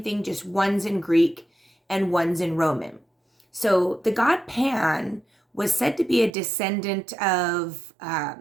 thing, just one's in Greek and one's in Roman. So the god Pan was said to be a descendant of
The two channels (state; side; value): drops out; left; at 6.3 s